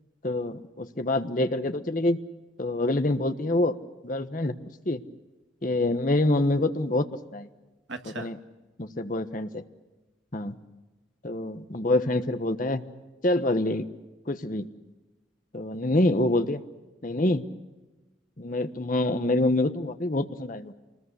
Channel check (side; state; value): both; normal; correlation 0.55